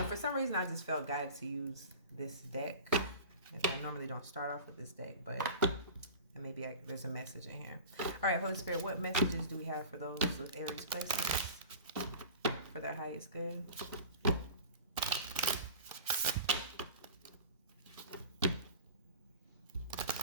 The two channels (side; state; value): both; inverted; correlation -0.37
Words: for some reason, I just felt guided to use this deck. I normally don't start off with this deck, but maybe there's a message in here. All right, Holy Spirit, what messages do we have for those with Aries placements for their highest good?